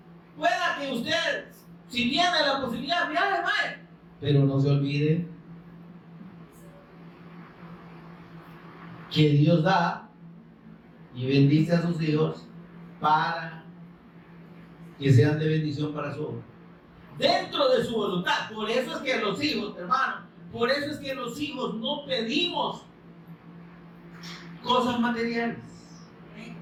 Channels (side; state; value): both; identical; correlation 1.00